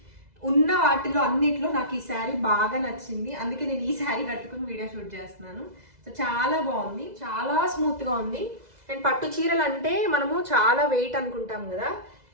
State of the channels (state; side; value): late; left; 2.0 ms